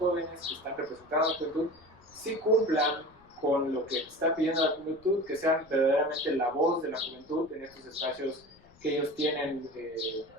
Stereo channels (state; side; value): noise; left; rumble, 28 dB below the sound